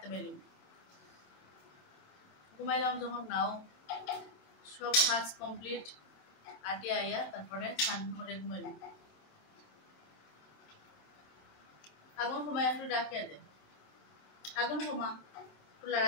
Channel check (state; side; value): late; right; 28 ms